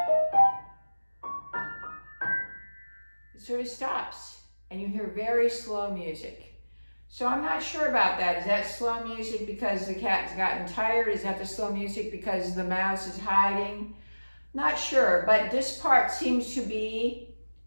sort of stops and you hear very slow music. So I'm not sure about that. Is that slow music because the cat's gotten tired? Is that the slow music because the mouse is hiding? Not sure, but this part seems to be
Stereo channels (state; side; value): inverted; both; correlation -1.00